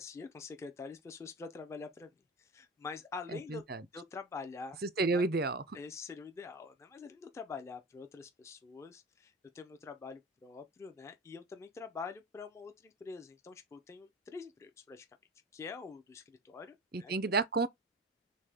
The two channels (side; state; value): both; normal; correlation 0.30